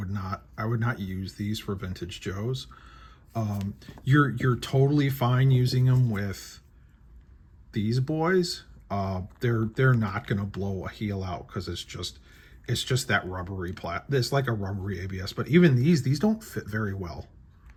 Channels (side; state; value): both; identical; correlation 1.00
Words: not use these for Vintage Joes. You're totally fine using them with these boys. They're not gonna blow a heel out because it's just that rubbery it's like a rubbery ABS. But even these don't fit very well.